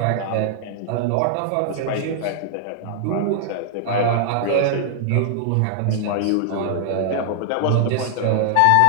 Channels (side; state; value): both; different; correlation -0.01